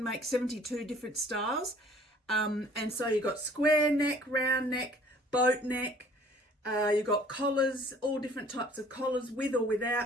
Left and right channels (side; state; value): both; normal; correlation 0.53